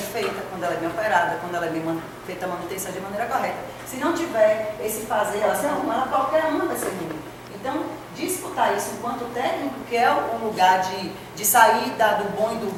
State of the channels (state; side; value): identical; both; correlation 1.00